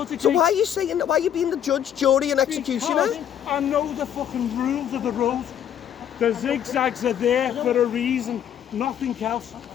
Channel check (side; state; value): right; quieter; 9.6 dB